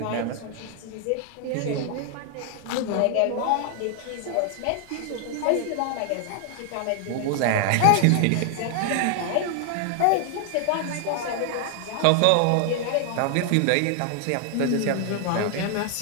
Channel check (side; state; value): both; different; correlation 0.00